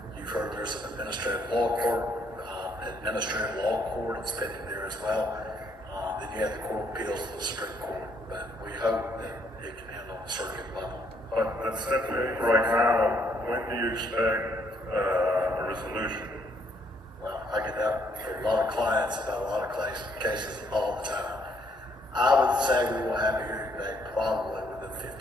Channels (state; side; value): normal; both; correlation 0.69